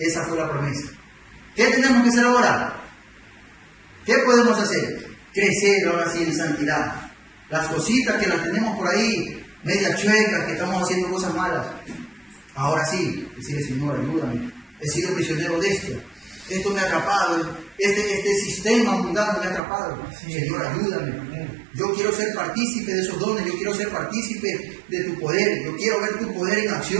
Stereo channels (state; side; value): drops out; left; at 19.6 s